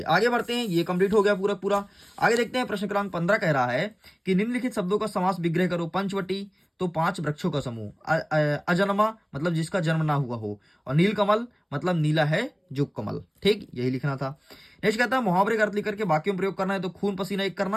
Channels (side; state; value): both; identical; correlation 1.00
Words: आगे बढ़ते हैं, ये कंप्लीट हो गया पूरा पूरा। आगे देखते हैं। प्रश्न क्रमांक 15 कह रहा है कि निम्नलिखित शब्दों का समास विग्रह करो। पंचवटी, तो 5 वृक्षों का समूह। अजन्मा मतलब जिसका जन्म ना हुआ हो, और नीलकमल मतलब नीला है जो कमल, ठीक, यही लिखना था। नेक्स्ट कहता है मुहावरे का अर्थ लिख करके वाक्यों में प्रयोग करना है। तो खून पसीना एक